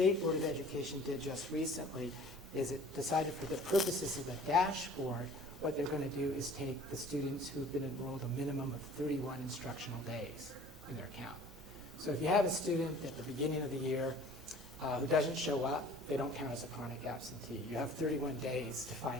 Board of Education did just recently is it decided for the purposes of the dashboard, what they're going to do is take the students who've been enrolled a minimum of 31 instructional days in their count. So if you have a student at the beginning of the year who doesn't show up, they don't count as a chronic absentee. You have 31 days to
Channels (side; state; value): both; normal; correlation 0.49